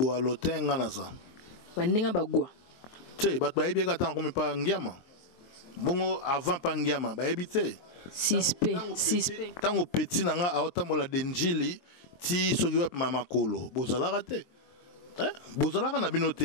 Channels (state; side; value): late; right; 23 ms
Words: alotin ngana za bandinga bagwa te bato ba yebi ka tan comme pa ngiama bongo avant pa ngiama ba yebi te 6P tango petit nanga aotamola denjili ti soki wa mama kolo bozala raté. Bozalaka na